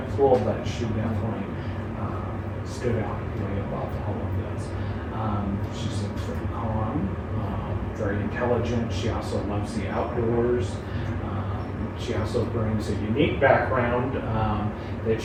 pool, but she definitely stood out way above all of this. She's very calm, very intelligent. She also loves the outdoors. She also brings a unique background that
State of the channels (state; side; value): identical; both; correlation 1.00